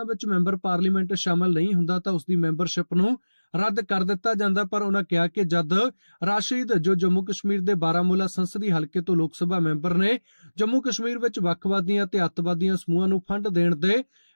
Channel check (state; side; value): inverted; both; correlation -1.00